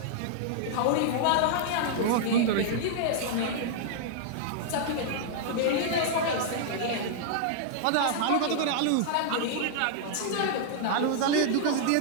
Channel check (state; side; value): different; both; correlation -0.01